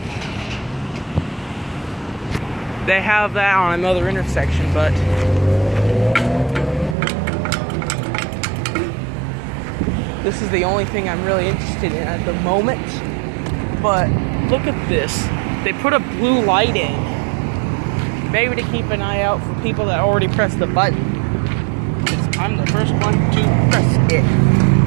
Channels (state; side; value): drops out; left; at 7.0 s